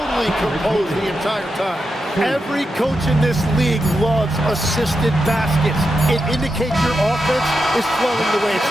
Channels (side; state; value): both; normal; correlation 0.87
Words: composed the entire time. Every coach in this league loves assisted baskets. It indicates your offense is flowing the way it's